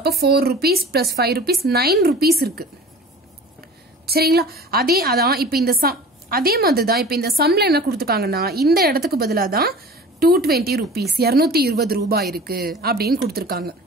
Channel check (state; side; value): normal; both; correlation 0.41